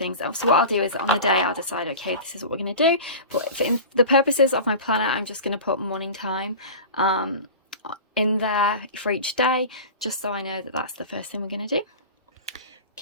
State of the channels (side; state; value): both; inverted; correlation -0.33